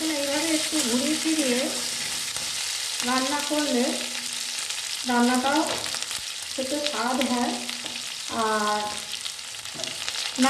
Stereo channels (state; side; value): identical; both; correlation 1.00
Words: এইভাবে একটু ঘুরিয়ে ফিরিয়ে রান্না করলে রান্নাটাও খেতে স্বাদ হয়, আর